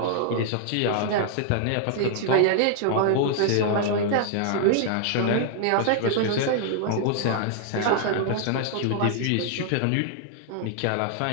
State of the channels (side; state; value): both; different; correlation -0.01